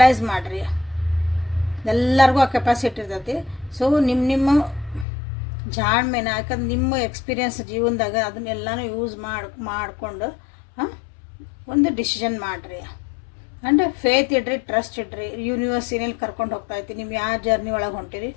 ಮಾಡಿರಿ. ಎಲ್ಲರಿಗೂ ಆ ಕೆಪಾಸಿಟಿ ಇರ್ತೈತಿ. ಸೊ ನಿಮ್ಮ ಜಾಣ್ಮೆನ, ಯಾಕಂದ್ರೆ ನಿಮ್ಮ ಎಕ್ಸ್ಪೀರಿಯನ್ಸ್ ಜೀವನದಾಗ ಅದನ್ನೆಲ್ಲನೂ ಯೂಸ್ ಮಾಡಿಕೊಂಡು ಒಂದು ಡಿಸಿಷನ್ ಮಾಡಿರಿ. ಆ್ಯಂಡ್ ಫೇತ್ ಇಡ್ರಿ, ಟ್ರಸ್ಟ್ ಇಡ್ರಿ. ಯೂನಿವರ್ಸ್ ಏನೇನು ಕರ್ಕೊಂಡು ಹೋಗ್ತಾಯಿತ್ತು, ನೀವು ಯಾವ ಜರ್ನಿ ಒಳಗೆ ಹೊಂಟಿರಿ.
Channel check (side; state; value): right; drops out; at 5.1 s